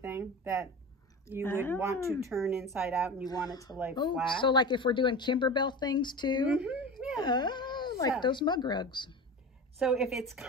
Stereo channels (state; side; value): normal; both; correlation 0.30